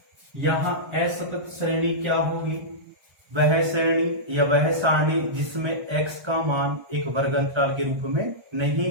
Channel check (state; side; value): late; left; 1.3 ms